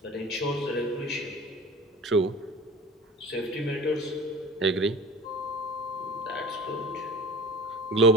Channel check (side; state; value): both; normal; correlation 0.39